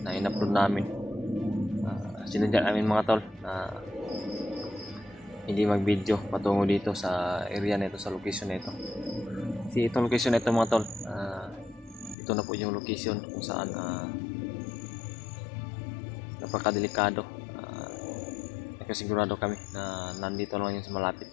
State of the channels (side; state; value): right; drops out; at 12.2 s